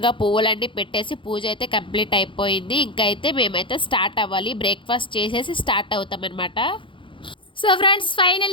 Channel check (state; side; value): late; right; 0.25 ms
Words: పువ్వులన్నీ పెట్టేసి పూజ అయితే కంప్లీట్ అయిపోయింది. ఇంకా అయితే మేమైతే స్టార్ట్ అవ్వాలి. బ్రేక్ఫాస్ట్ చేసేసి స్టార్ట్ అవుతాం అనమాట. సో ఫ్రెండ్స్,